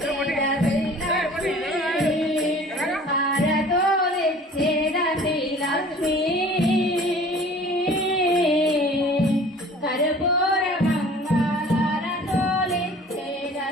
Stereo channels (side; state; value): both; normal; correlation 0.47